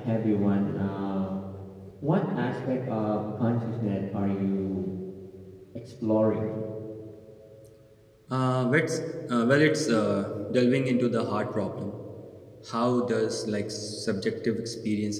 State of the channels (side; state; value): both; identical; correlation 1.00